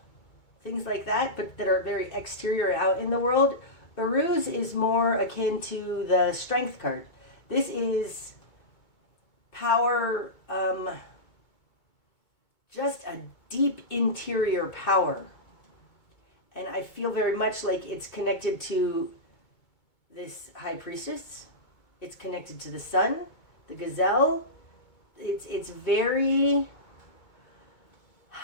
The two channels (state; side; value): late; right; 2.2 ms